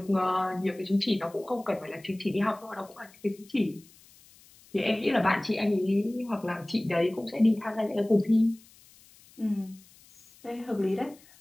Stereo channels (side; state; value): left; noise; hiss, 26 dB below the sound